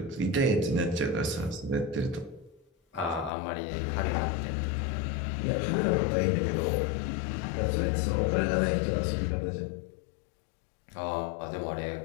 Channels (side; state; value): right; drops out; at 3.3 s